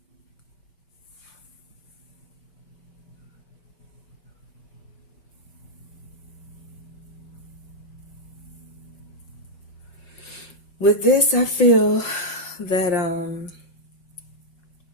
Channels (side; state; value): right; late; 5.6 ms